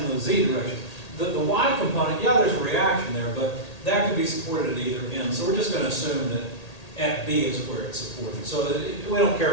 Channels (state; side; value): late; right; 1.8 ms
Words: the z direction, the y component, yeah, there's a reaction there, but that could be supported at either end. So we're just going to assume that at B is where it's supported. So we don't care